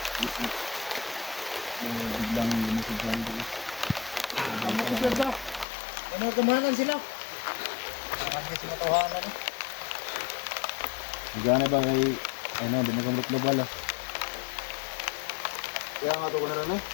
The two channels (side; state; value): right; drops out; at 5.7 s